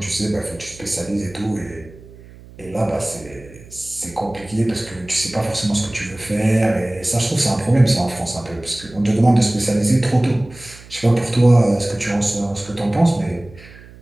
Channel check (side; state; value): right; noise; hum, 20 dB below the sound